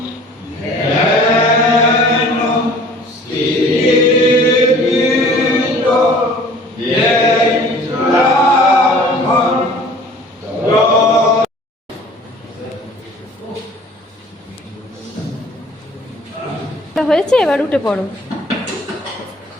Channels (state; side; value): normal; both; correlation 0.49